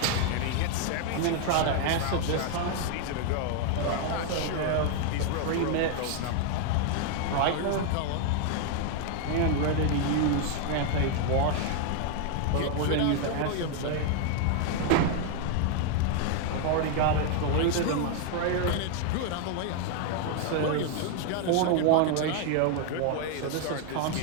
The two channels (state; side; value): different; both; correlation 0.00